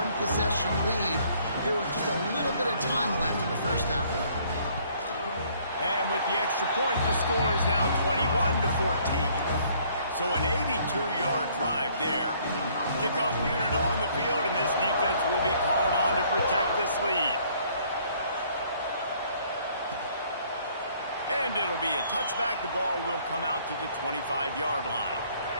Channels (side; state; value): both; inverted; correlation -0.62